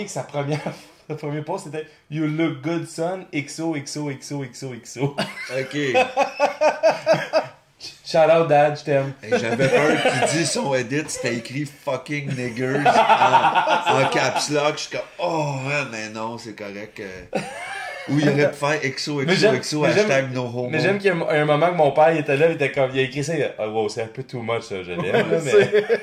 que le premier post c'était You look good, son, XOXOXOXOXO. OK. Shout out, dad, je t'aime. Et j'avais peur qu'il dise son edit, c'était écrit fucking niggers en caps lock. Je suis comme, oh, ouais, mais non, c'est correct. Ou il aurait pu faire XOXOXO hashtag no homo. Mais j'aime qu'il y a un moment que mon père il était là, il était comme, il a écrit ça, il a dit, oh, wow, c'est un peu too much ça, je l'aime, là, mais...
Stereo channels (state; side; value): identical; both; correlation 1.00